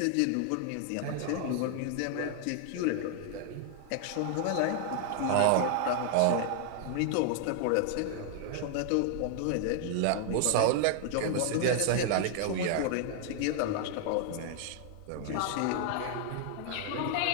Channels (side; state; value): both; different; correlation -0.01